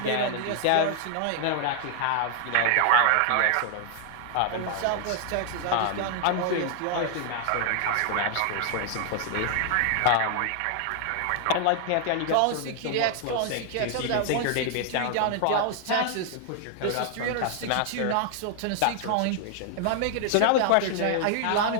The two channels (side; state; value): both; different; correlation 0.00